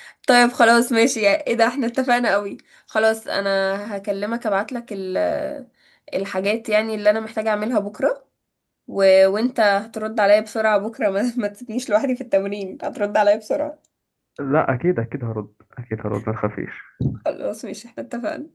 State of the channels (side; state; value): both; identical; correlation 1.00